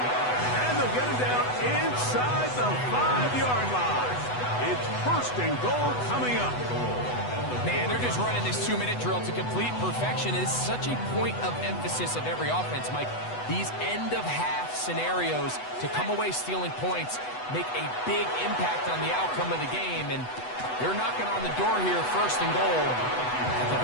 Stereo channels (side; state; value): right; late; 8.1 ms